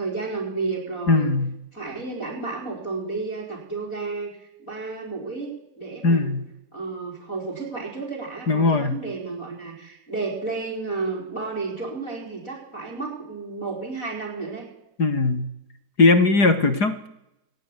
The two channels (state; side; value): late; right; 4.9 ms